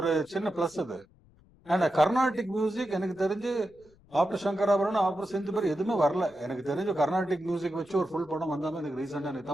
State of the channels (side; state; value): left; noise; rumble, 29 dB below the sound